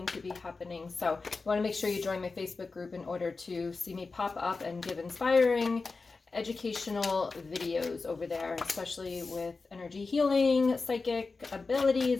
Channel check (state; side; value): quieter; right; 4.1 dB